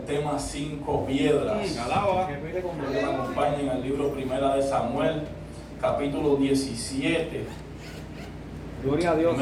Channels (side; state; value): both; identical; correlation 1.00